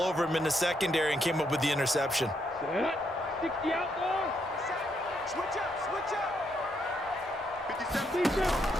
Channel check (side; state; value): both; normal; correlation 0.76